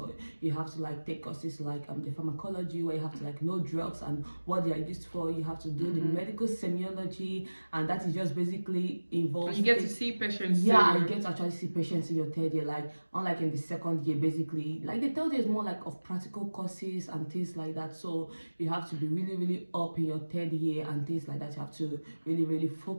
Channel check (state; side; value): inverted; both; correlation -1.00